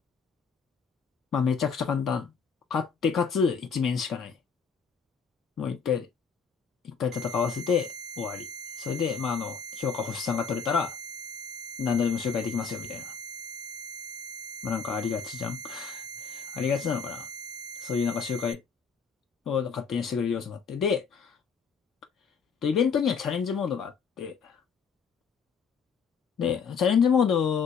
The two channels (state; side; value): quieter; right; 5.9 dB